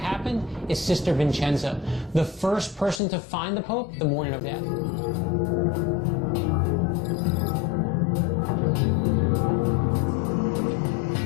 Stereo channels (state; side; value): drops out; right; at 3.0 s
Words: is Sister Vincenza, the first person to find the Pope the morning of death.